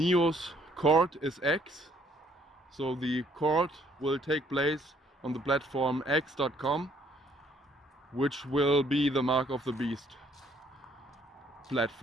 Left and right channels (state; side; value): normal; both; correlation 0.64